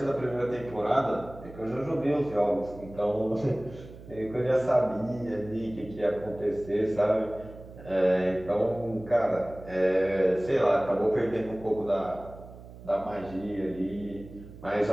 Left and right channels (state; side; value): noise; right; hum, 17 dB below the sound